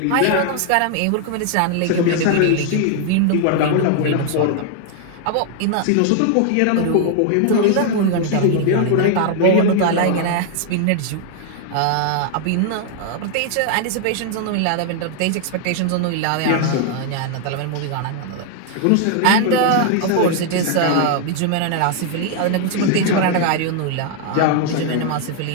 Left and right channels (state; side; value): different; both; correlation 0.00